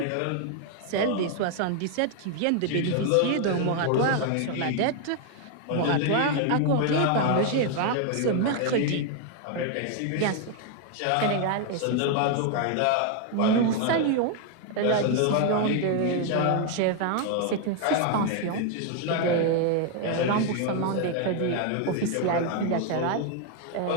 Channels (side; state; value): both; different; correlation 0.01